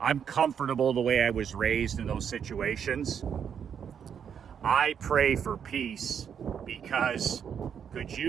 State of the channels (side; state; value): left; quieter; 7.8 dB